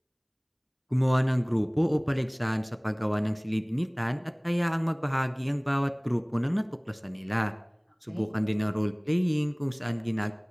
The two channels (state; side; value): identical; both; correlation 1.00